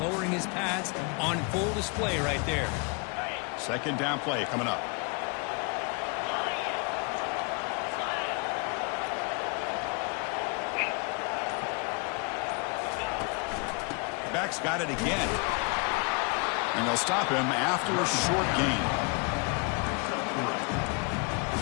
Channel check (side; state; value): right; quieter; 33.2 dB